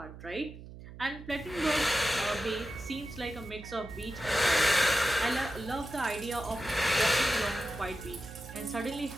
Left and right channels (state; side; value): noise; right; hum, 14 dB below the sound